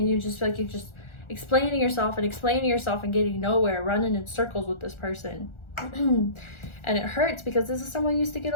you just feel like you're just explaining yourself and getting nowhere, running in circles with this person. And it hurts because this is someone you used to get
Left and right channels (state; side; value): late; right; 1.4 ms